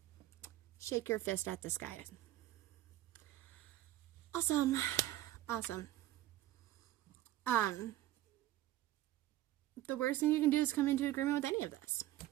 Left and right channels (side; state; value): left; quieter; 14.6 dB